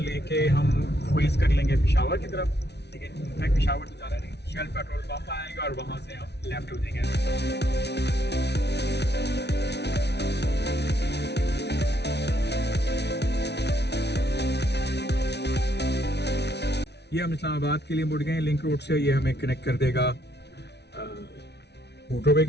हम फेस कर लेंगे पेशावर की तरफ, लेकिन मैं पेशावर तो जा रहा नहीं, शेल पेट्रोल पंप आएगा और वहाँ से हम लेफ्ट हो जाएंगे। ये हम इस्लामाबाद के लिए मुड़ गए लिंक रोड से, ये हमें कनेक्ट कर देगा मोटरवे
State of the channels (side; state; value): right; late; 0.49 ms